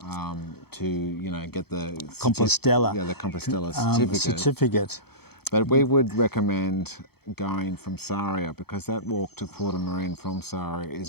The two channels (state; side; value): late; right; 0.96 ms